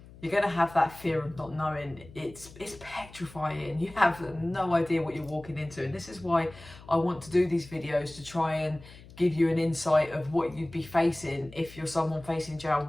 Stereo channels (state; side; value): noise; left; hum, 20 dB below the sound